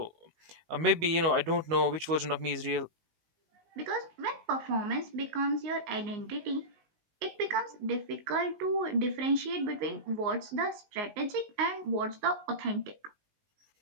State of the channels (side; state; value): left; late; 19 ms